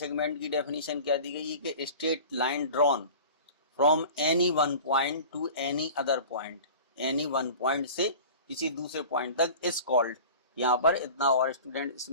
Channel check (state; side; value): inverted; both; correlation -0.39